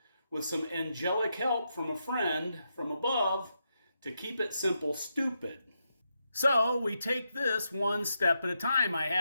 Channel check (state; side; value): inverted; both; correlation -0.83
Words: with some angelic help from a friend from above, to keep it simple, stupid. So we take this one step at a time. I